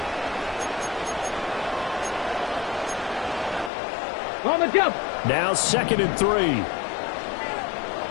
On the jump. Now 2nd and 3.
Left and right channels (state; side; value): drops out; right; at 3.7 s